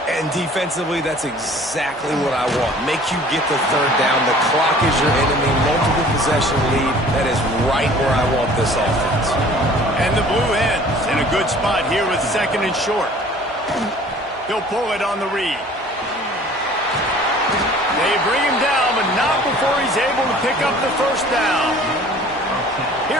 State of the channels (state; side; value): normal; both; correlation 0.50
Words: And defensively, that's exactly what I want. Make you get the 3rd down. The clock is your enemy. Multiple possession lead. That is right where I want this offense. And the Blue Hens in a good spot here with 2nd and short. He'll pull it on the read. They bring him down, but not before he's able to pick up the first down.